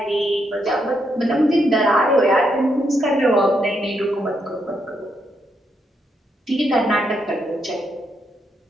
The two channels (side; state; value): both; normal; correlation 0.79